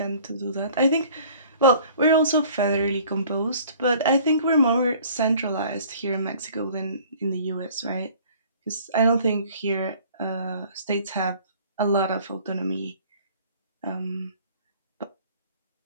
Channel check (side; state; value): both; inverted; correlation -0.52